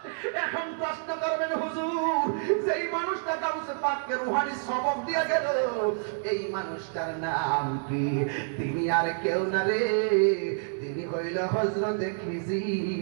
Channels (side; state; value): left; silent; digital silence